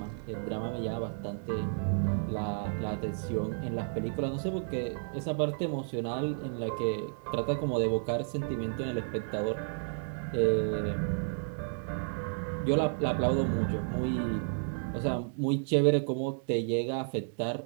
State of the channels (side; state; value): left; silent; digital silence